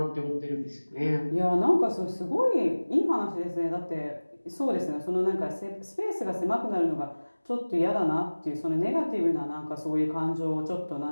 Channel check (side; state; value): both; inverted; correlation -1.00